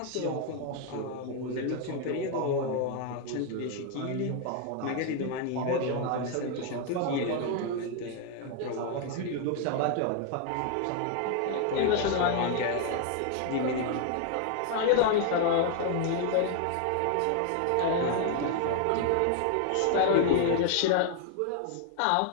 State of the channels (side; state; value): both; different; correlation 0.00